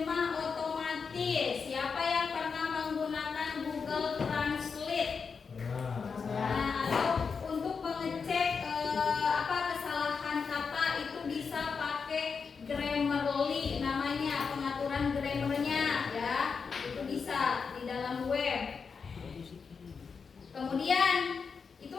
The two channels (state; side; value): quieter; right; 5.5 dB